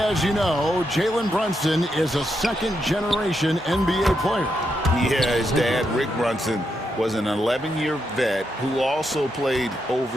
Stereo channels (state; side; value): normal; both; correlation 0.82